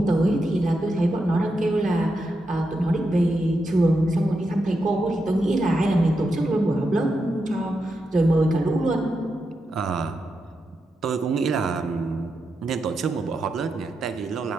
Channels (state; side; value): normal; both; correlation 0.86